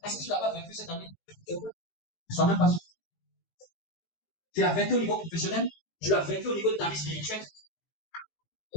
Est-ce que tu l'as pas vaincu cette année? Je ne suis même pas sûr. Tu l'as vaincu au niveau professionnel, tu l'as vaincu au niveau de ta vie spirituelle.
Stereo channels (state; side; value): late; right; 18 ms